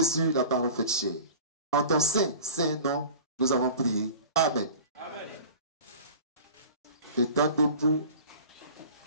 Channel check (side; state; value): both; inverted; correlation -0.39